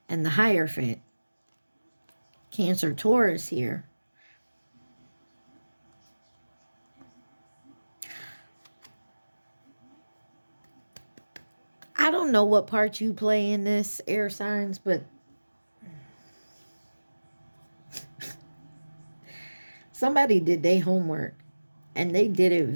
and the Hierophant. Cancer, Taurus here. I don't know what part you play in this, air signs, but somebody did their homework and they did it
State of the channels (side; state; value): both; inverted; correlation -1.00